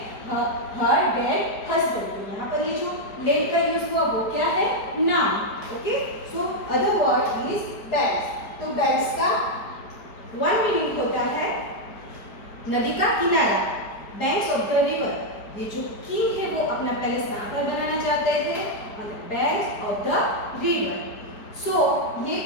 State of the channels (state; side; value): late; right; 4.7 ms